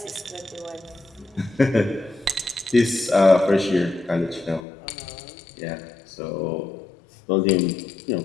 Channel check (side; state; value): right; drops out; at 4.7 s